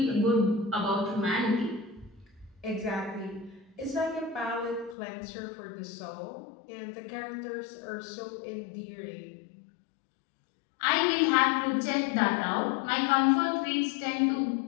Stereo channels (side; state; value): right; drops out; at 5.0 s